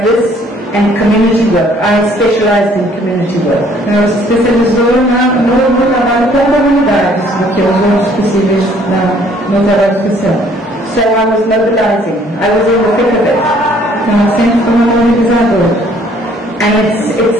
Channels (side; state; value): both; normal; correlation 0.60